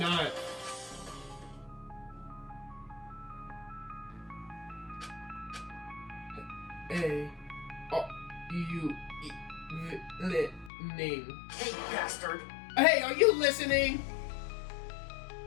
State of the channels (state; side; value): drops out; right; at 10.7 s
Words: Hey... Oh, you... name. Hey, bastard. Hey, are you listening?